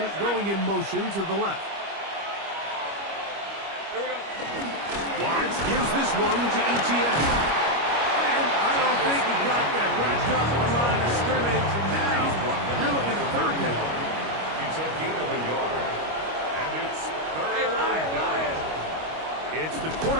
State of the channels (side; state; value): left; late; 25 ms